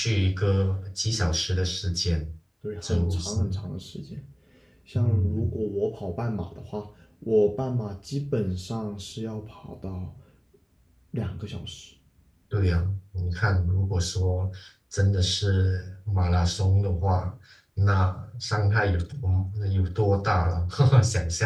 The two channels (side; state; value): both; identical; correlation 1.00